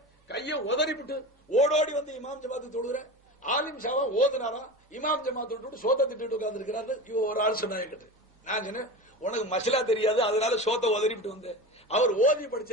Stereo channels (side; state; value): both; normal; correlation 0.29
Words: கைய உதறிவிட்டு ஓடோடி வந்து இமாம் ஜமாத்து தொழுகிறேன். ஆலிம் ஷாவா ஓதுனாரா, இமாம் ஜமாத்து விட்டு சோத்தை திட்டு உட்கார்ந்து இருக்கிறாரு. ஒரு ஆள் சொன்னாங்க. நான் சொன்னேன், உனக்கு மசலா தெரியாது, அதனால சோத்தை உதறிவிட்டு வந்து அவர் ஓதி